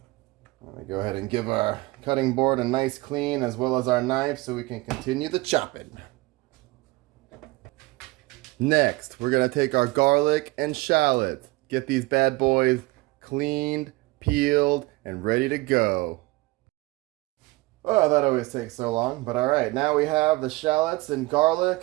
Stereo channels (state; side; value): quieter; left; 22.0 dB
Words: I'm going to go ahead and give our cutting board a nice clean as well as our knife so we can continue the chopping. Next, we're going to take our garlic and shallots. Get these bad boys cleaned, peeled, and ready to go. Oh, that always takes so long, but alright. Now we have the shallots and